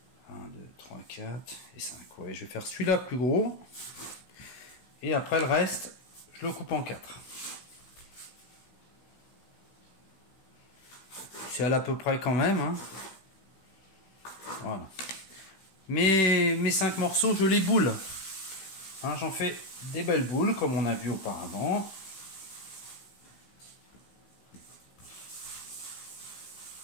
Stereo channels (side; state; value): right; late; 16 ms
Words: 1, 2, 3, 4 et 5. Ouais, je vais faire celui-là plus gros. Et après le reste, je le coupe en 4. C'est à peu près quand même. Hein. Voilà. Mes 5 morceaux, je les boule. Hein, j'en fais des belles boules, comme on a vu auparavant.